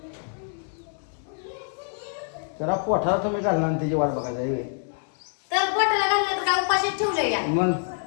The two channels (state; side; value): silent; right; 61 dB below the other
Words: जरा पोठाला तुम्ही घालणार आणि त्याची वाट बघायला आहे. तर पोटाला घाललं तर काय उपाशीच ठेवलंय या. मग